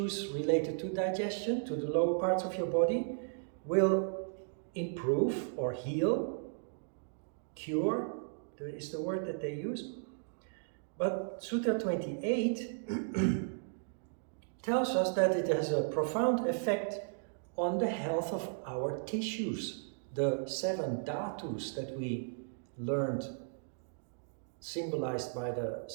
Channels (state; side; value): silent; left; digital silence